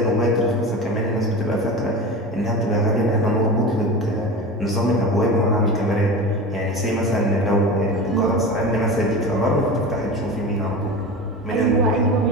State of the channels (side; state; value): both; normal; correlation 0.29